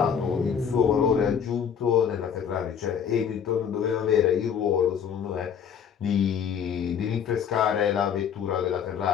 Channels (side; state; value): right; quieter; 7.8 dB